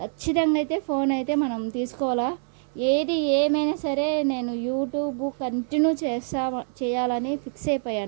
ఖచ్చితంగా అయితే ఫోన్ అయితే మనం తీసుకోవాలా. ఏది ఏమైనా సరే నేను యూట్యూబ్ కంటిన్యూ చేయాలని ఫిక్స్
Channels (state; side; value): silent; left; 59 dB below the other